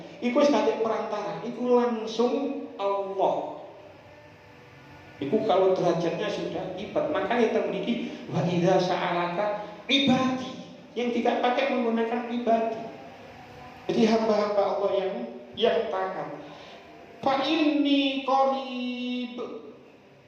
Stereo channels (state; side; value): identical; both; correlation 1.00